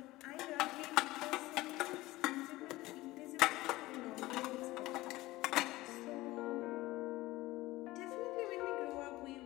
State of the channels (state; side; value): quieter; right; 18.6 dB